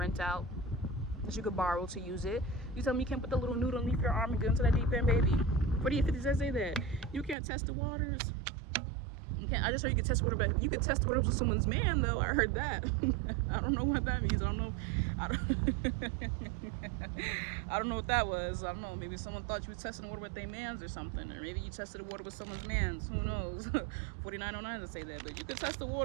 out, that you could borrow to use it. You tell me you can't put the little noodle underneath your arm and get into that deep end, baby. 4850 say that. You can't test the waters. You can't. I just heard you can test water, but you can test water with someone's man, though. I heard that. I don't know what that means. I don't know. I don't know what that was. I don't know. Maybe someone thought you were testing water with their mans or something, or maybe you tested the water with someone's mans. Who knows? 4909 to say that, but you can test the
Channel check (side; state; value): left; drops out; at 7.4 s